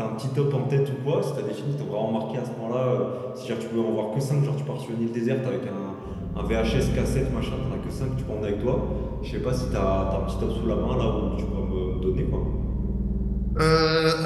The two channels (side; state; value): both; identical; correlation 1.00